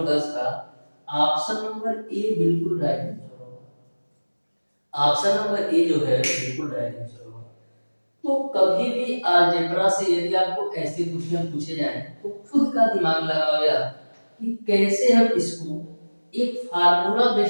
10 का ऑप्शन नंबर ए बिल्कुल राइट आंसर होगा। ऑप्शन नंबर ए जो है बिल्कुल राइट आंसर होगा। तो कभी भी अलजेब्रा से यदि आपको ऐसे क्वेश्चन पूछे जाएं तो खुद का दिमाग लगाओ यार कि कैसे हम इसको एक फार्मूला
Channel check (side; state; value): both; inverted; correlation -1.00